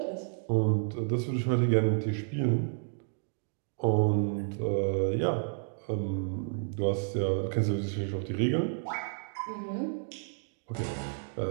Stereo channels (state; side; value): silent; left; digital silence